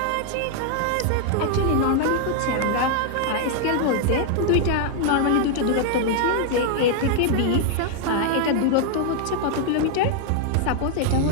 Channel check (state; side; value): different; both; correlation 0.00